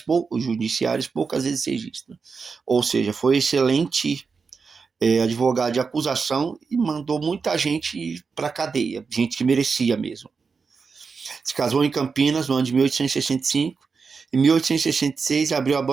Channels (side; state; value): left; quieter; 5.1 dB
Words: poucas vezes registram. Ou seja, foi excelente advogado de acusação e mandou muita gente para a cadeia, gente que merecia mesmo. Se casou em Campinas no ano de 1865. Em 1866, abriu a